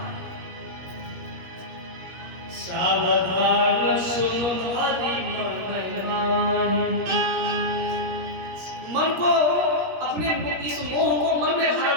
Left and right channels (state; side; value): late; left; 17 ms